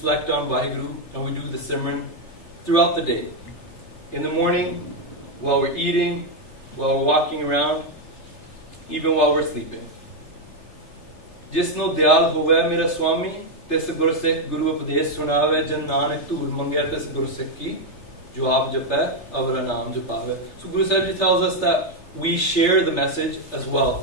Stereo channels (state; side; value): late; right; 3.3 ms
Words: on Vaheguru, and we do the Simran throughout the day. In the morning, while we're eating, while we're walking around, even while we're sleeping. Jisno Dayal Hove Mera Swami, tis Gursikh Guru Upadesh Sunave, Jan Nanak Tur Mangya tis Gursikh ki, jo aap jape, avra naam japave. So Guru Sahib Ji tells us that we share the message as